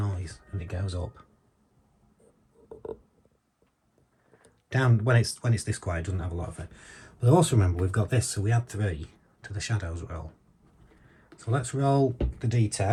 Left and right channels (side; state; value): both; identical; correlation 1.00